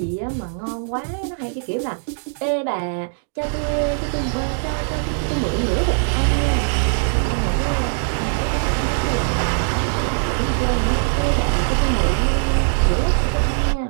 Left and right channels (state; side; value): silent; left; digital silence